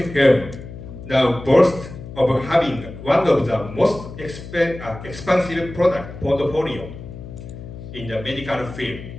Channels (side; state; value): left; noise; hum, 13 dB below the sound